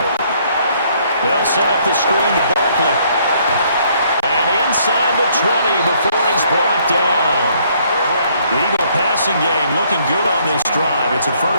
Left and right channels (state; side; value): inverted; both; correlation -0.66